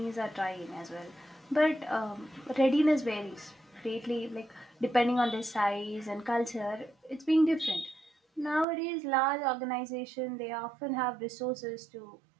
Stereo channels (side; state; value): left; drops out; at 8.7 s